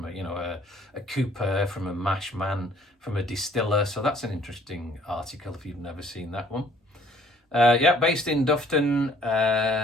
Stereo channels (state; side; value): normal; both; correlation 0.58